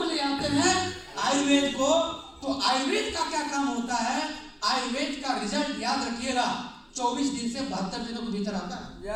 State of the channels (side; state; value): both; identical; correlation 1.00